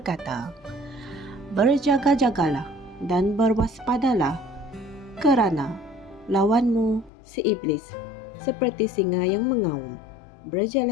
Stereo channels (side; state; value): right; drops out; at 7.1 s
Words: "Berjaga-jagalah dan berwaspadalah, kerana lawanmu si iblis seperti singa yang mengaum,